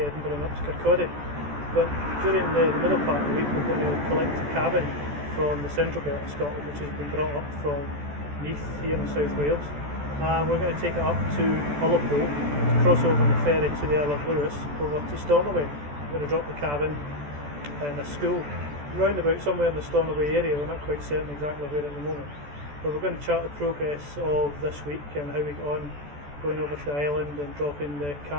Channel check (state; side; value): late; left; 14 ms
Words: and up to Kirkcaldy. But during the middle part of the week we're going to collect a cabin from the central belt of Scotland, which has been brought up from Neath here in South Wales. We're going to take it up to Ullapool, to cross over on the ferry to the Isle of Lewis, over to Stornoway. We're going to drop the cabin in a school round about somewhere in the Stornoway area. We're not quite certain exactly where at the moment, but we're going to chart the progress of this week and how we get on going over to the island and dropping the